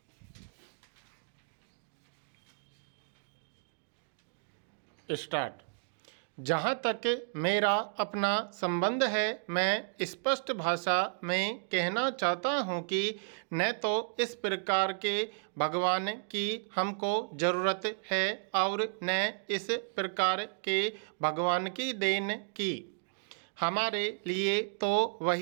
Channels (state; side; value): silent; left; digital silence